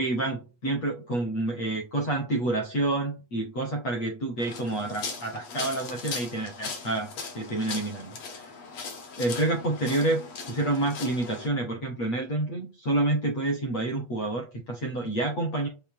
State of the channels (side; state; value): right; late; 8.3 ms